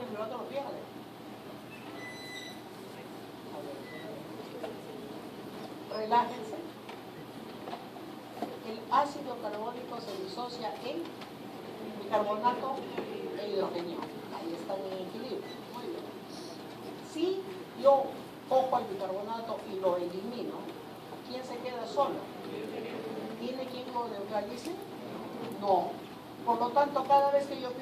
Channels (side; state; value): both; identical; correlation 1.00